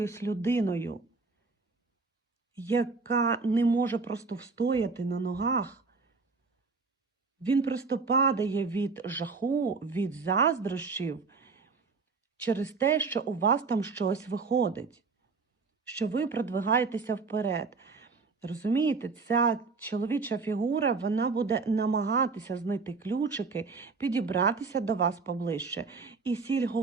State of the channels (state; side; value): quieter; left; 4.4 dB